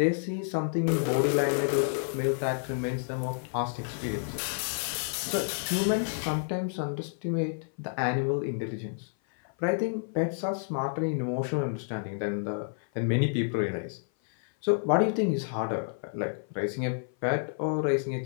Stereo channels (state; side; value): silent; right; 56 dB below the other